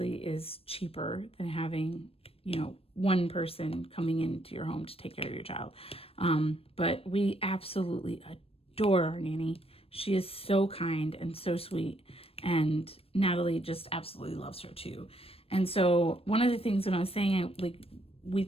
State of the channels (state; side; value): late; right; 0.28 ms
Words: is cheaper than having, you know, one person coming into your home to take care of your child. But we absolutely adore our nanny. She is so kind and so sweet, and Natalie just absolutely loves her too. And so one of the things when I was saying we